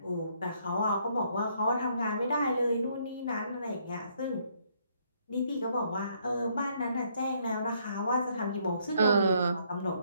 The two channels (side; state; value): both; inverted; correlation -0.69